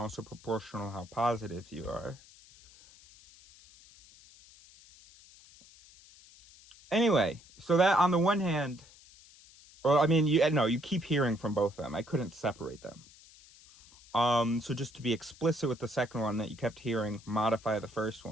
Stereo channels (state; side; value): noise; left; hiss, 24 dB below the sound